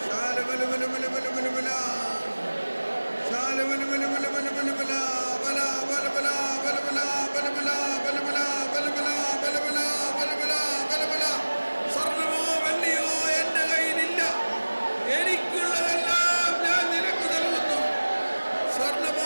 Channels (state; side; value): inverted; both; correlation -1.00